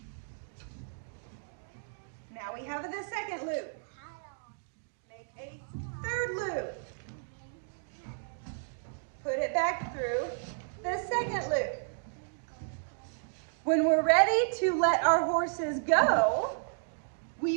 Now we have the second loop. Make a third loop. Put it back through the second loop. When we're ready to let our horses go,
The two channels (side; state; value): left; silent; digital silence